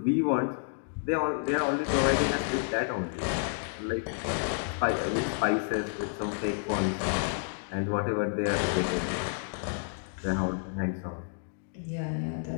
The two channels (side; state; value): right; silent; digital silence